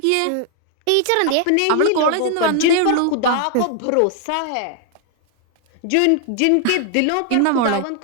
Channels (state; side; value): different; both; correlation 0.00